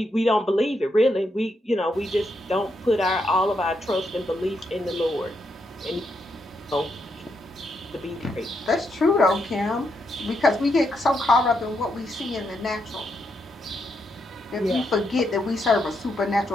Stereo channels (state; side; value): normal; both; correlation 0.80